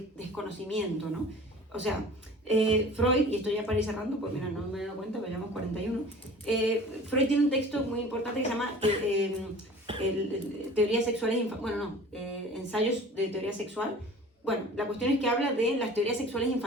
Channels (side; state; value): both; normal; correlation 0.43